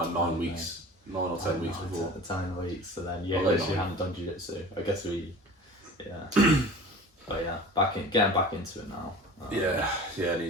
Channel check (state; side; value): normal; both; correlation 0.40